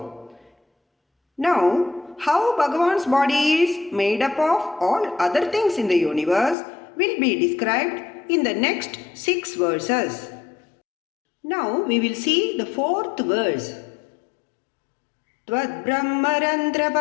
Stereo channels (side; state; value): right; drops out; at 6.6 s